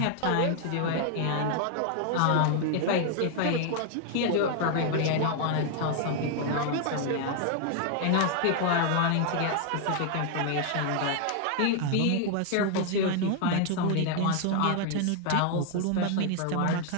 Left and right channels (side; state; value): both; different; correlation 0.00